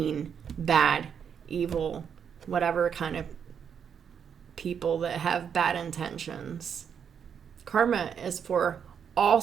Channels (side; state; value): left; quieter; 7.5 dB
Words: bad, evil, whatever kind of people that have bad intentions. Karma is for all